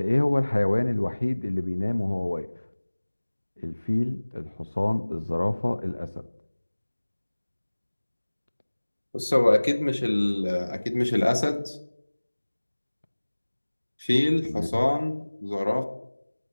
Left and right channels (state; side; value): inverted; both; correlation -1.00